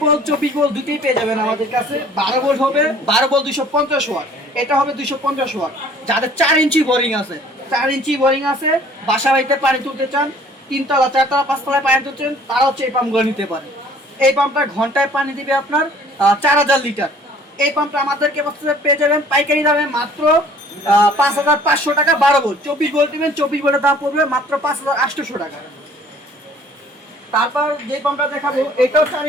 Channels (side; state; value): both; normal; correlation 0.54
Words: 24 ভোল্ট দুটোই পেয়ে যাবেন আমাদের কাছে। 12 ভোল্ট হবে 12 ভোল্ট 250 ওয়াট, এটা হবে 250 ওয়াট। যাদের 4 ইঞ্চি বোরিং আছে, 4 ইঞ্চি বোরিং আছে, বাসা বাড়িতে পানি তুলতে চান, 3 তলা 4 তলা 5 তলায় পানি তুলতে চান, তারা হচ্ছে এই পাম্পগুলো নিতে পারে। এই পাম্পটা ঘন্টায় পানি দিবে আপনার 4000 লিটার। এই পাম্পটা আমাদেরকে পেয়ে যাবেন পাইকারি দামে মাত্র 5500 টাকা। 12 ভোল্ট, 24 ভোল্ট দিবেন, 24 ভোল্টের দাম পড়বে মাত্র 5800 টাকা। তারপর যে পাম্পটা দেখাবো, এটাও 4